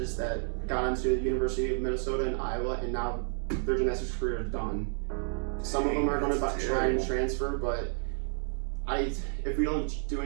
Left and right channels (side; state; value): left; silent; 57 dB below the other